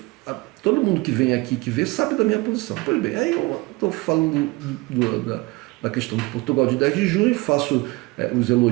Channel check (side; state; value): left; quieter; 22.9 dB